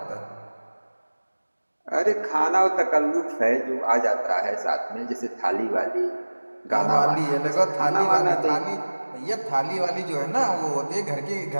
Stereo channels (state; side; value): inverted; both; correlation -1.00